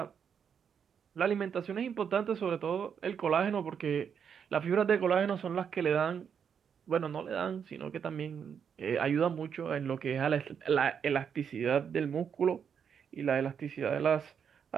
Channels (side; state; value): left; quieter; 7.4 dB